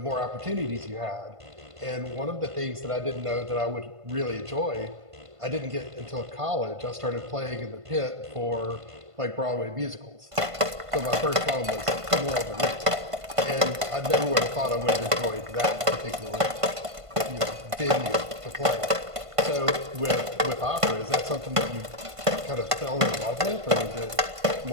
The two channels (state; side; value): late; left; 1.5 ms